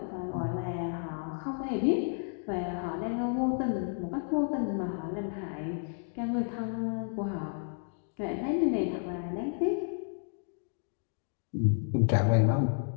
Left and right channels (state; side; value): silent; right; 57 dB below the other